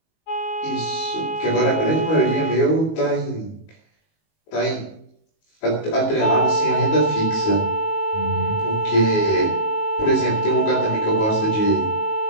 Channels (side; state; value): right; late; 19 ms